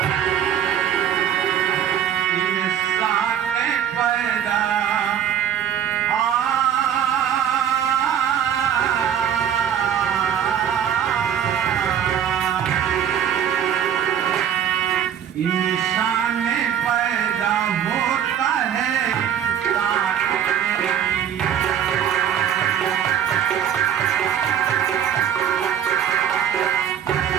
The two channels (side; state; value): left; quieter; 9.3 dB